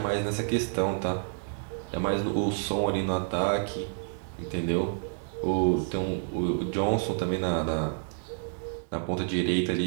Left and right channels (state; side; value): silent; left; digital silence